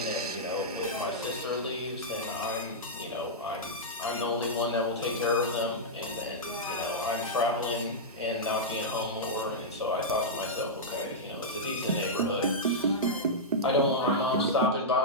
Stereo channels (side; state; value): both; normal; correlation -0.09